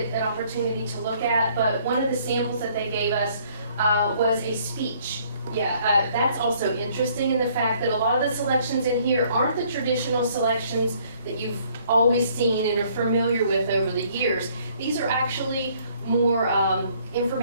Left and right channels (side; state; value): both; inverted; correlation -0.62